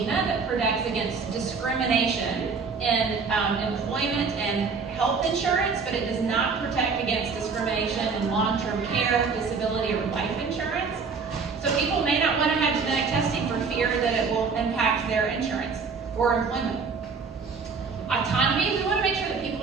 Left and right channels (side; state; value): left; quieter; 5.1 dB